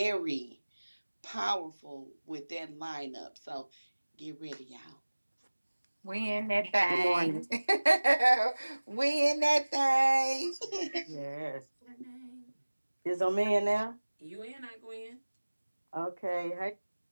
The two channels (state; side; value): inverted; both; correlation -1.00